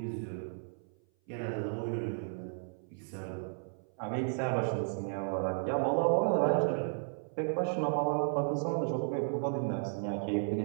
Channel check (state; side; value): silent; left; 55 dB below the other